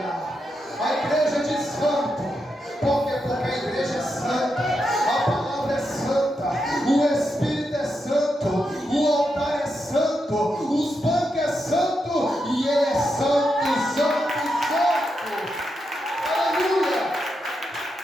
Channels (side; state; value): both; normal; correlation 0.85